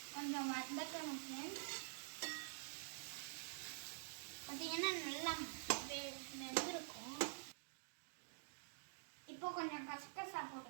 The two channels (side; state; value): left; silent; digital silence